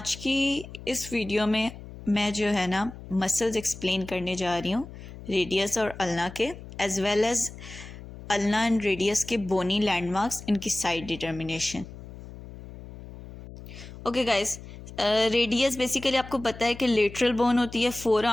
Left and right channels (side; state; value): left; noise; hum, 15 dB below the sound